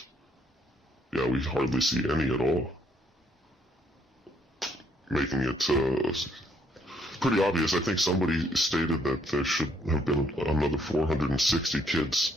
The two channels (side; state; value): both; normal; correlation 0.69